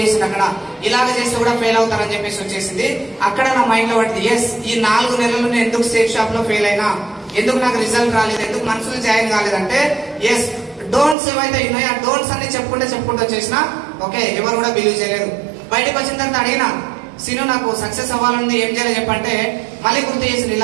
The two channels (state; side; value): drops out; left; at 11.2 s